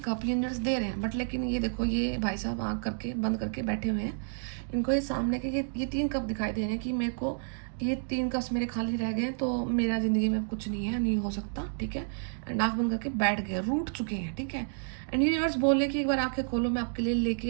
कप यूनिवर्स दे रहे हैं। बट लेकिन ये देखो, ये भाई साहब आँख करके बंद करके बैठे हुए हैं, इनको ये सामने के ये 3 कप दिखाई दे रहे हैं कि मेरे को ये 3 कप्स मेरे खाली रह गए, तो मेरा ज़िंदगी में कुछ नहीं है, नहीं हो सकता, ठीक है। एंड आँख बंद करके बैठ गए, रूठ चुके हैं, ठीक है। एंड यूनिवर्स बोले कि एक बार आँखें खोलो, मैं आपके लिए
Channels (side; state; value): left; silent; digital silence